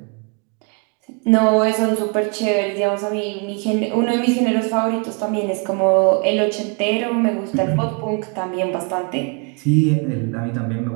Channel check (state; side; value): quieter; left; 34.7 dB